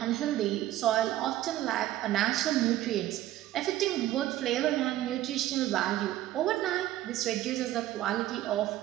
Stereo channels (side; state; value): left; quieter; 14.1 dB